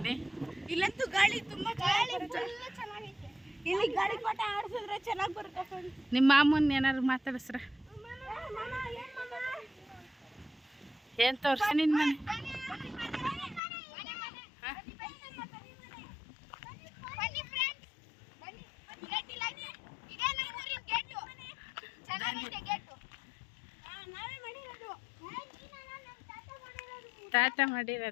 ಇಲ್ಲಂತೂ ಗಾಳಿ ತುಂಬ ಚೆನ್ನಾಗೈತೆ. ಇಲ್ಲಿ ಗಾಳಿ ಪಾಠ ಆಡಿಸಿದ್ರೆ ಚೆನ್ನಾಗಿ ಬರುತ್ತೆ. ನಿಮ್ಮ ಮಾಮೂನ್ ಏನಾದ್ರು ಮಾತಾಡಿಸ್ರ? ಏನು ತೋರಿಸಿ ನಿನ್ನ ಮನೆ? ತಾತ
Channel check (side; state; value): right; drops out; at 13.6 s